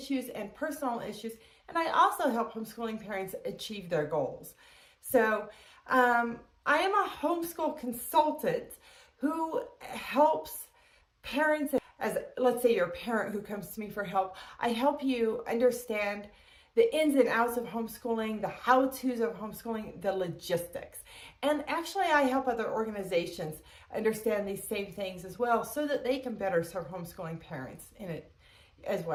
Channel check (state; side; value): identical; both; correlation 1.00